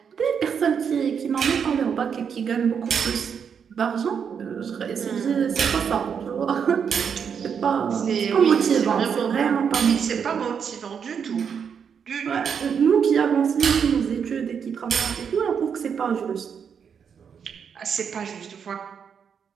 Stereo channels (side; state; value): left; quieter; 7.1 dB